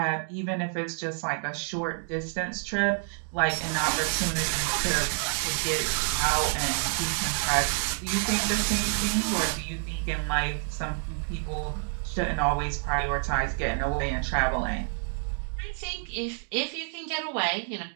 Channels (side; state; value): left; silent; 58 dB below the other